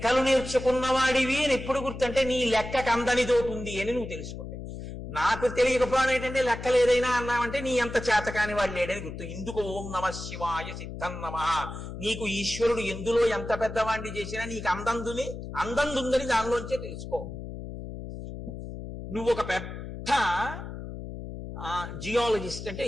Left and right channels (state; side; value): noise; left; hum, 9 dB below the sound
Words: నేర్చుకున్నవాడివి అని ఎప్పుడు గుర్తంటే నీ లెక్కకు అందనిదోటి ఉంది అని నువ్వు తెలుసుకుంటే. నాకు తెలియకపోవడం ఏంటంటే లెక్కలు ఏదైనా అన్నామంటే నీ అంత చేతకాని వాడు లేడని గుర్తు. ఇందుకు ఓం నమ శివాయ సిద్ధం నమ. నీకు ఈశ్వరుడు ఎందులో ఎంత పెద్దవాడిని చేసినా నీకు అందందుందని దానిలోంచే తెలుసుకో. నువ్వు ఒక పెద్ద జియాలజిస్ట్ అంటే